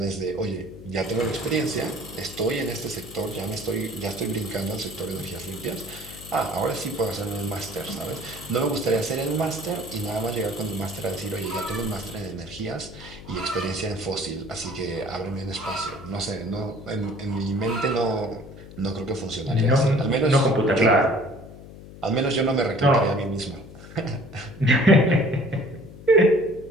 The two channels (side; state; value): left; noise; hum, 16 dB below the sound